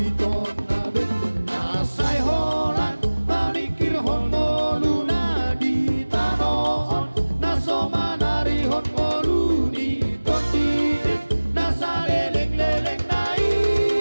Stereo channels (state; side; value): inverted; both; correlation -1.00